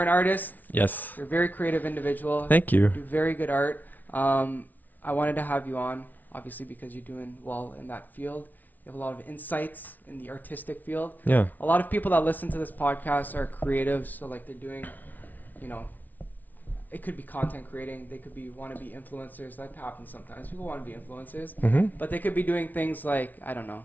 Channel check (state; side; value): late; right; 0.080 ms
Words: an artist. Yes. You're a very creative individual. Thank you. You do very good art. I wanted to have you on, obviously, because you're doing well in that field. You have a lot of insights in the artistic field. Yeah. A lot of people that listen to this podcast are creatives, so like they're doing, it could be content creating. They could be want to be influencers. That happens sometimes. People want to be influencers, but they could be doing things like I don't